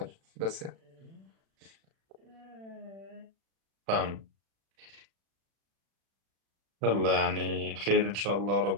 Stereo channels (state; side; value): late; left; 36 ms